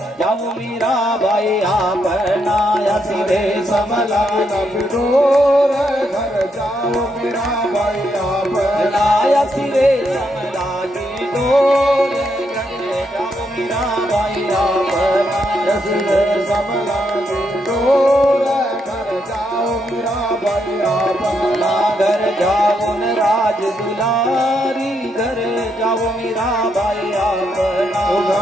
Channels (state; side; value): normal; both; correlation 0.78